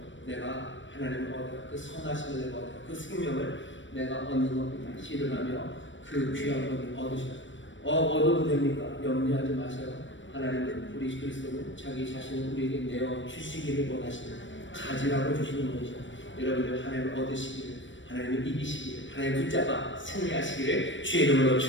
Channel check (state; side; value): late; right; 0.55 ms